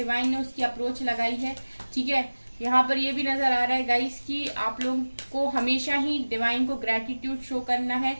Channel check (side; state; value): both; inverted; correlation -1.00